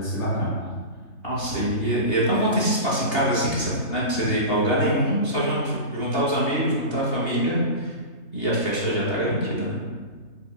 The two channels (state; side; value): late; right; 3.3 ms